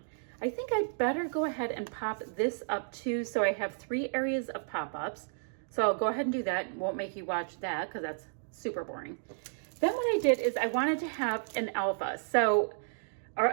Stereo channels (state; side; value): silent; left; digital silence